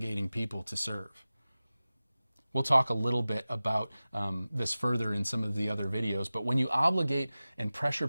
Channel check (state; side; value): inverted; both; correlation -0.97